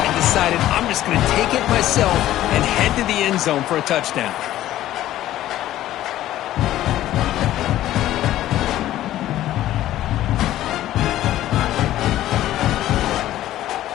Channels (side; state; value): right; quieter; 13.7 dB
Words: decided, I'm just going to take it myself and head to the end zone for a touchdown.